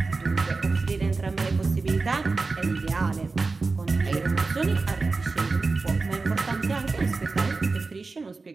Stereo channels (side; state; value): left; quieter; 4.0 dB